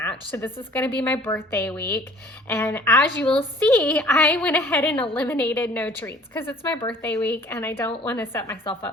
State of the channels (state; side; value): normal; both; correlation 0.52